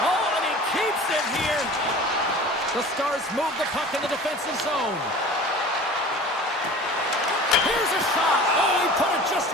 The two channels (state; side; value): normal; both; correlation 0.41